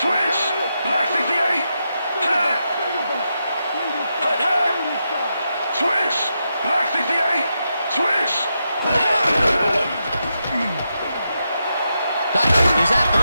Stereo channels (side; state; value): both; inverted; correlation -0.85